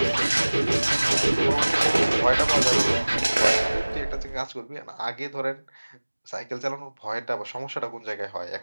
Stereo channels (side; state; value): both; inverted; correlation -1.00